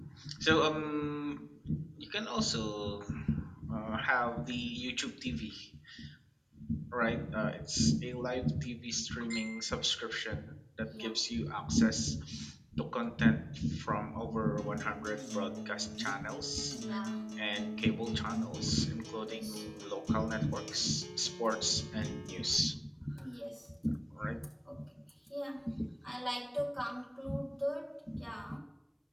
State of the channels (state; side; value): identical; both; correlation 1.00